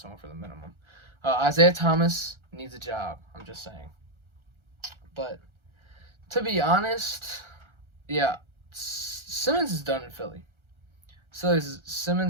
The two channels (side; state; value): left; late; 1.3 ms